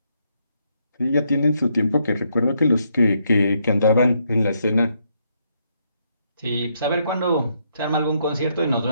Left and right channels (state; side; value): inverted; both; correlation -0.76